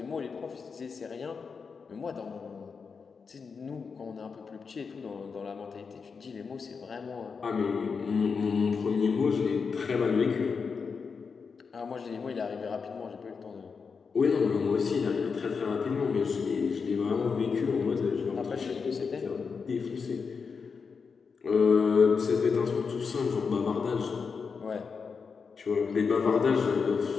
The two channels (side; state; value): right; quieter; 5.4 dB